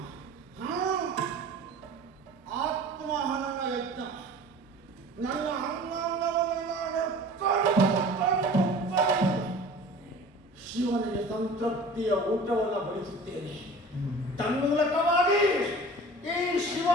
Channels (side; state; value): both; normal; correlation 0.42